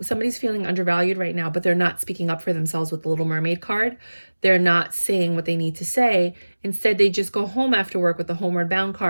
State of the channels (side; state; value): both; inverted; correlation -1.00